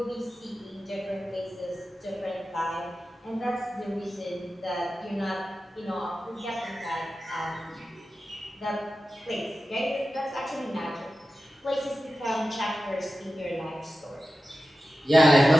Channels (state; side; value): normal; both; correlation 0.93